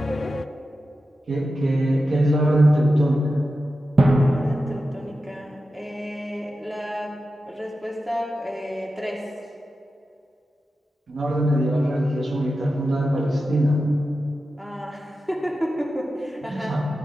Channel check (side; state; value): both; normal; correlation 0.92